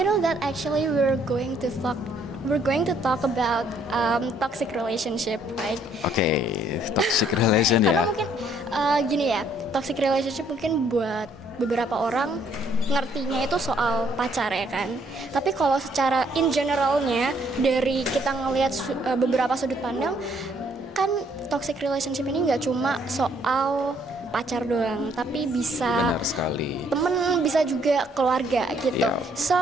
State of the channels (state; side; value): normal; both; correlation 0.66